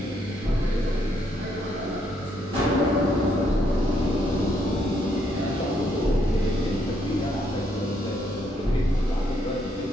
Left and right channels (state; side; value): normal; both; correlation 0.73